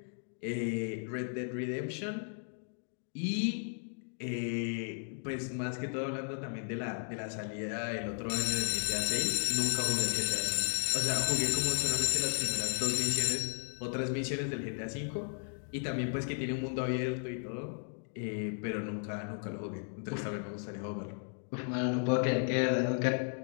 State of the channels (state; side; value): silent; right; 55 dB below the other